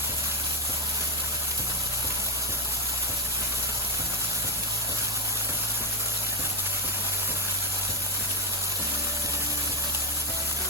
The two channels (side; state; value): both; normal; correlation 0.07